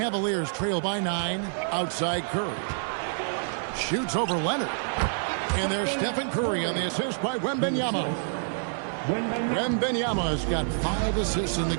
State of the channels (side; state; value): left; silent; 58 dB below the other